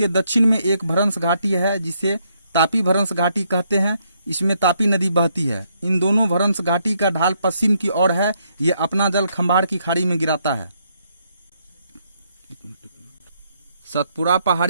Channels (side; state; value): both; inverted; correlation -0.74